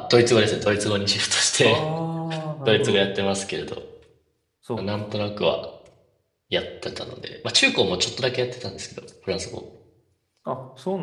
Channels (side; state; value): both; identical; correlation 1.00